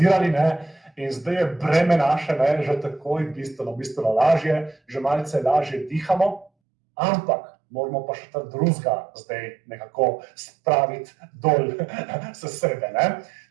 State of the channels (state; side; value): drops out; left; at 6.5 s